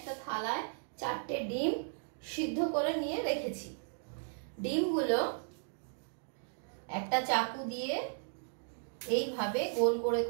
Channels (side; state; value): left; silent; digital silence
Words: থালায় 4টে ডিম সিদ্ধ করে নিয়ে রেখেছি। ডিমগুলো একটা চাকু দিয়ে এইভাবে গোল করে